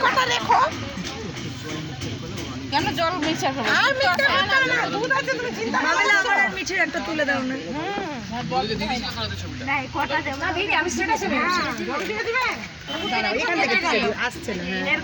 কথা রেখো। কেন জল মিশা করবে? আর মিশা করবে না, দুধ আছে, তুমি চিন্তা করো না। আমার আর মিঠির একটা তুলে দাও না। না, কটা দেব না দিদি, আমি স্ট্যাটাসে বলছি। জল দিয়ে দিবে? এখান থেকে আসছে না,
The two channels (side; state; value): both; identical; correlation 1.00